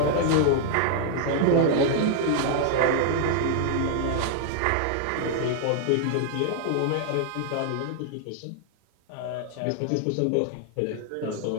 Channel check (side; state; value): both; different; correlation 0.00